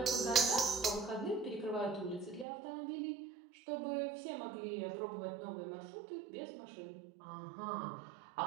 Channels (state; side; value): drops out; left; at 2.5 s